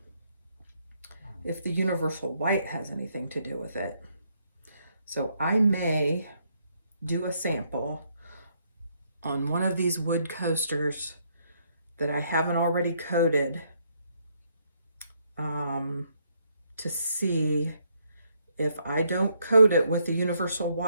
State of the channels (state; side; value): inverted; both; correlation -0.73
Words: if the universal white has anything to do with it. So I may do a sample on one of these wood coasters that I haven't already coated to see if I don't coat it with the universal